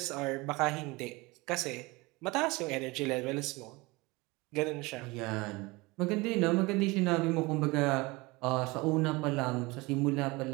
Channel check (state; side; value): quieter; left; 23.7 dB